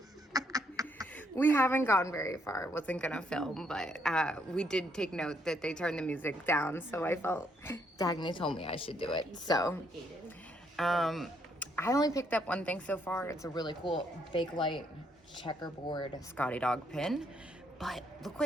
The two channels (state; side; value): normal; both; correlation 0.72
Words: We haven't gone very far. Wasn't gonna film, but we did take note that they turned the music down, so I felt Dagny told me I should do it. So, I only picked up one thing so far. It's a really cool Bakelite checkerboard Scotty Dog pin, but look